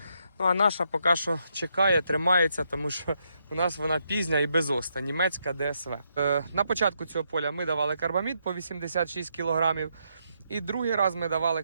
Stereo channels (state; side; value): inverted; both; correlation -0.78